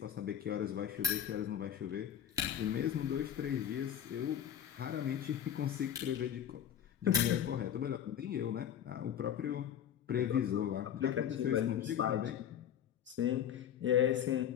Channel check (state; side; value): quieter; right; 9.8 dB